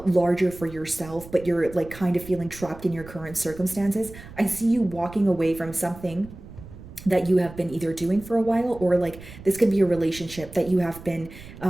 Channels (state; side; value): noise; right; rumble, 16 dB below the sound